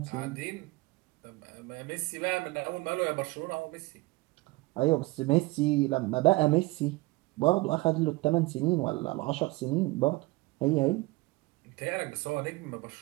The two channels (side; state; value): left; quieter; 22.0 dB